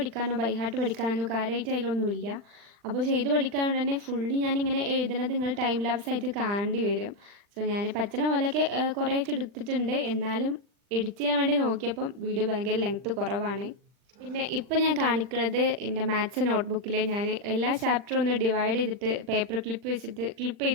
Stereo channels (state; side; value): late; left; 40 ms